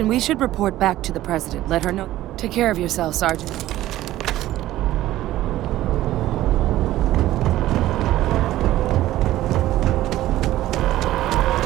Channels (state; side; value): quieter; left; 14.8 dB